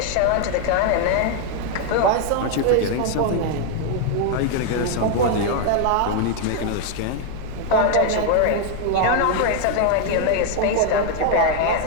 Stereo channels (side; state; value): both; different; correlation 0.01